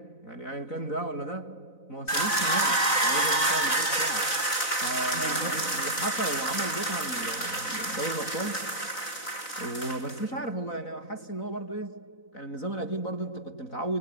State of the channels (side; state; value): right; late; 4.0 ms